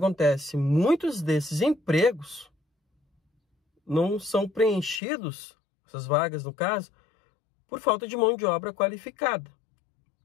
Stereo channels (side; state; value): right; drops out; at 5.0 s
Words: Muitos desses empregos não são preenchidos, essas vagas no caso, por falta de mão de obra qualificada.